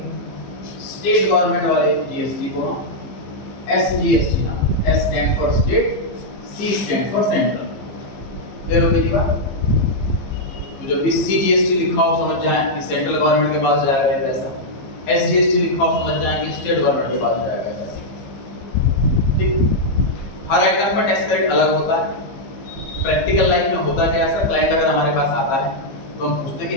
स्टेट गवर्नमेंट वाले जीएसटी को हम एसजीएसटी नाम, S stand for state, C stand for central. Clear हो गई बात? तो जब भी सीजीएसटी लिखा हो समझ जाएं कि सेंट्रल गवर्नमेंट के पास जाएगा ये पैसा, एसजीएसटी लिखा हो समझ जाएं कि स्टेट गवर्नमेंट के पास जाएगा ये पैसा। ठीक, हर आइटम पर टैक्स रेट अलग होता है। प्रैक्टिकल लाइफ में होता क्या है सर, क्लाइंट अगर हमारे पास आता है तो हम पूछते हैं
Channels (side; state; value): right; late; 15 ms